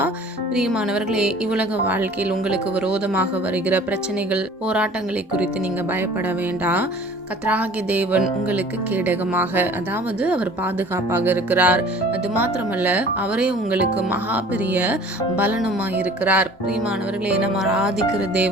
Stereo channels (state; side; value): normal; both; correlation 0.47